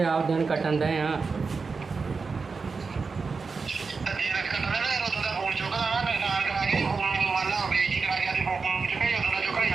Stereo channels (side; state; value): left; quieter; 4.7 dB